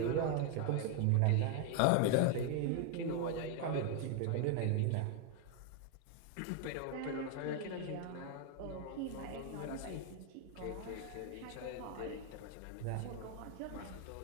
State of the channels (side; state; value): both; different; correlation 0.01